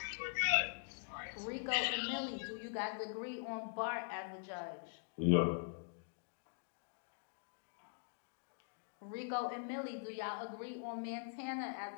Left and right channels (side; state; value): right; silent; digital silence